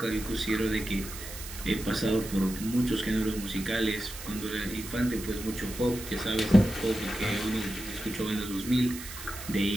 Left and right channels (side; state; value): right; noise; hiss, 11 dB below the sound